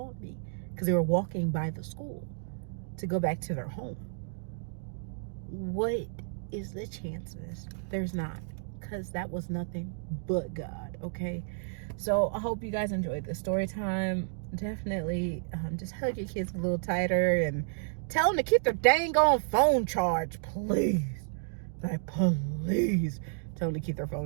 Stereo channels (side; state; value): left; silent; digital silence